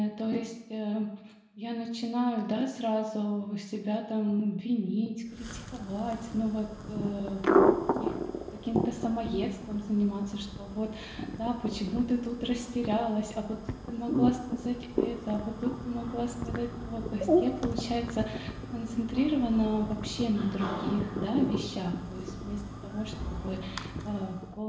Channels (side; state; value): both; identical; correlation 1.00